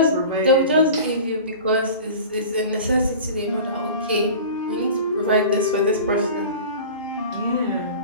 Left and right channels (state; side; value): inverted; both; correlation -0.37